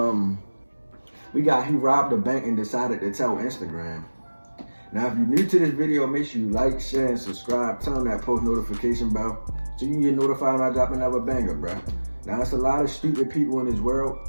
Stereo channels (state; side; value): inverted; both; correlation -1.00